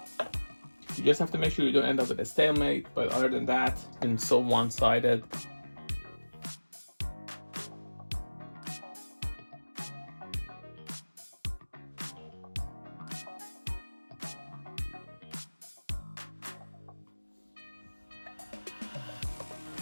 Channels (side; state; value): both; inverted; correlation -1.00